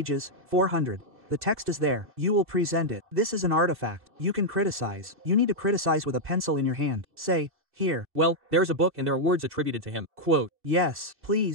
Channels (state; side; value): late; left; 2.6 ms